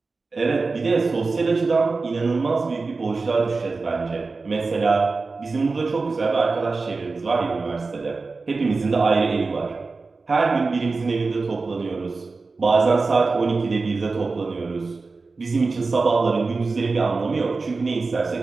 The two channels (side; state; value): left; quieter; 4.0 dB